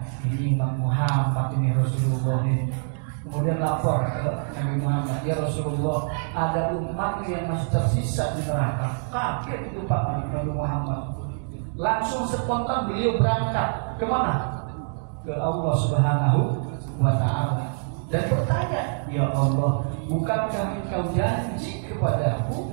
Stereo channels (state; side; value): silent; left; 62 dB below the other